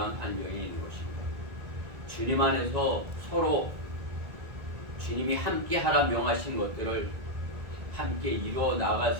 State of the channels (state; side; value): late; left; 1.9 ms